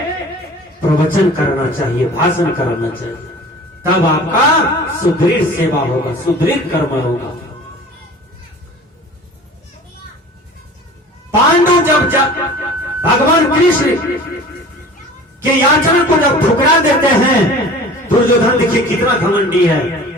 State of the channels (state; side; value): normal; both; correlation 0.42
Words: प्रवचन करना चाहिए, भाषण करना चाहिए। तब आपका सुदृढ़ सेवा होगा, सुदृढ़ कर्म होगा। पांडु जब भगवान कृष्ण के याचना को जब ठुकरा देते हैं, दुर्योधन देखिए कितना घमंडी है।